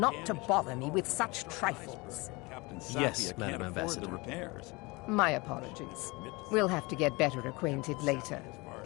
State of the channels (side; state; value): right; quieter; 25.2 dB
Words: to bother me with such trifles. Yes, Madam Ambassador. My apologies. We'll have to get better acquainted later.